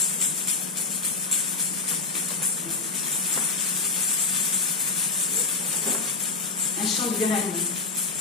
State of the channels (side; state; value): right; quieter; 3.9 dB